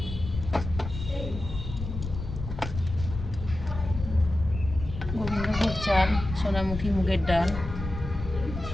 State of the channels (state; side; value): noise; left; rumble, 7 dB below the sound